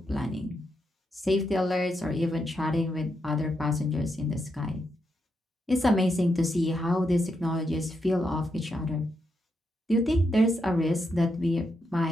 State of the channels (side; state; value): both; normal; correlation 0.82